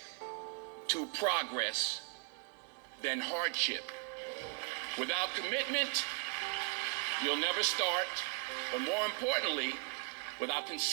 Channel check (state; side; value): quieter; left; 36.7 dB